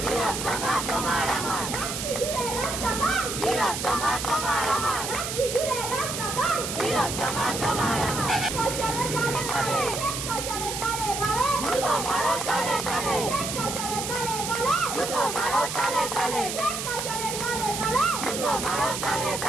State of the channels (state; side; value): noise; right; hiss, 4 dB below the sound